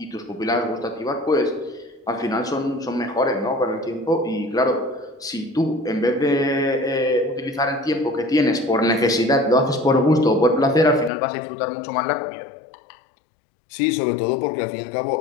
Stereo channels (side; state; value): right; drops out; at 11.1 s